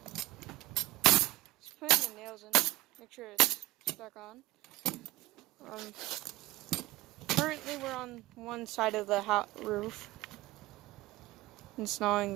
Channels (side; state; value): left; quieter; 18.1 dB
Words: Just putting the nails in. Make sure it's stuck on. Currently we're on one side of the roof. Installing